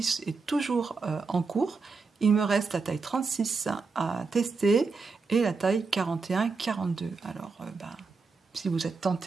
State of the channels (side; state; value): left; quieter; 4.5 dB